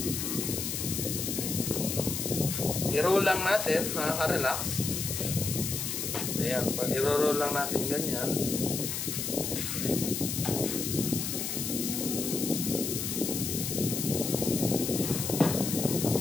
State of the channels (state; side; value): noise; left; hiss, 3 dB below the sound